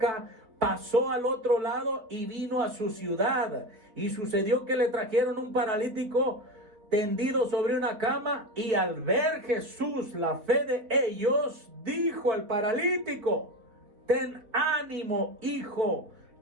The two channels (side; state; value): left; late; 3.9 ms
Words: pasó al otro lado y vino a su ciudad. Y sucedió que le trajeron un paralítico tendido sobre una cama, y al ver Jesús la fe de ellos, dijo al paralítico: ten ánimo, hijo,